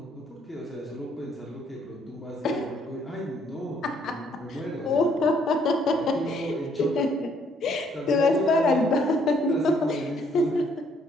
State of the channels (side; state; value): both; normal; correlation 0.66